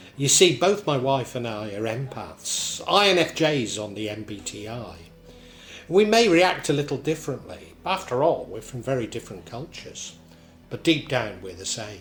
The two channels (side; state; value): both; identical; correlation 1.00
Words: You see, both my wife and I are empaths, INFJs on the MBTI. We may react a little differently. After all, we're from very different cultures. But deep down, we're the